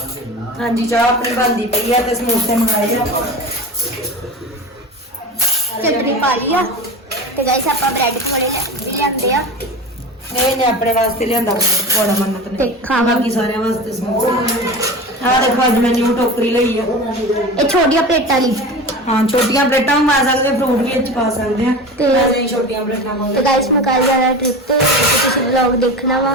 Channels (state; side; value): normal; both; correlation 0.31